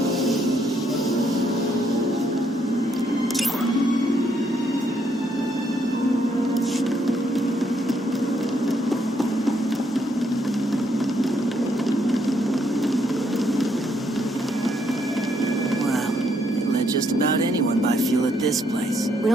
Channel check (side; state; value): both; normal; correlation 0.72